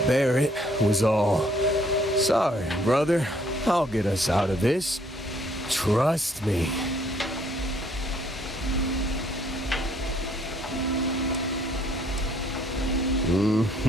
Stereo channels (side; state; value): both; normal; correlation 0.64